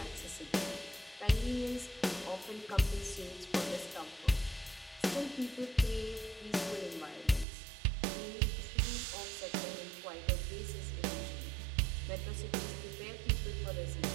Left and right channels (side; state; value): left; drops out; at 7.5 s